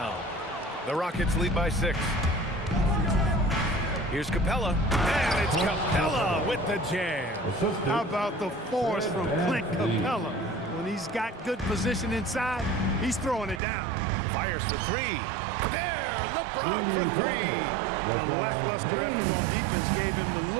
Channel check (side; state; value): left; drops out; at 13.6 s